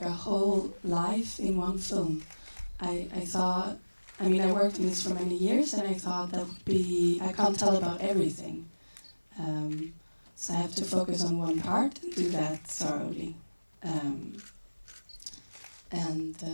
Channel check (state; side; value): inverted; both; correlation -1.00